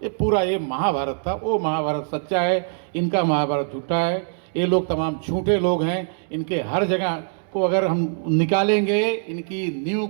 ये पूरा ये महाभारत था। वो महाभारत सच्चा है, इनका महाभारत झूठा है। ये लोग तमाम झूठे लोग हैं। इनके हर जगह को अगर हम निकालेंगे, इनकी नींव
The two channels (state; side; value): silent; left; digital silence